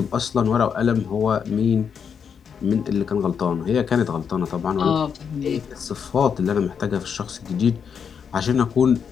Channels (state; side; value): quieter; right; 7.0 dB